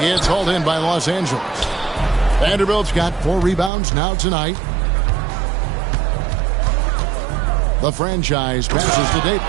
hauled in by Los Angeles. Vanderbilt's got 4 rebounds now tonight. The franchise passes to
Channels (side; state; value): left; drops out; at 3.7 s